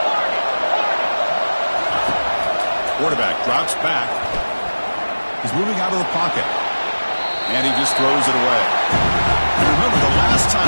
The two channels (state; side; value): inverted; both; correlation -1.00